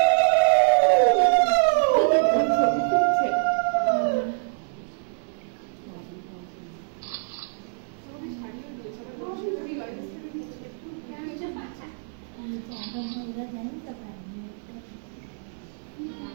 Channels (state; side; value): silent; left; 57 dB below the other